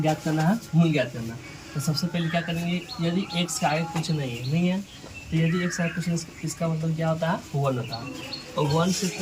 करना है, मूल ज्ञात करना। तो सबसे पहले क्या करेंगे, यदि x का आगे कुछ नहीं है तो यदि x का कुछ इसका मतलब क्या होता है, 1 होता है। और 1 से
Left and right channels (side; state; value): both; identical; correlation 1.00